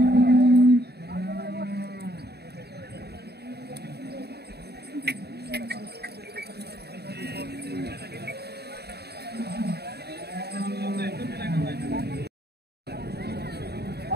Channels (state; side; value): late; left; 0.47 ms